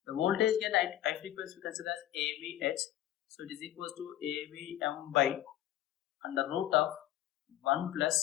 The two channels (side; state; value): right; quieter; 13.2 dB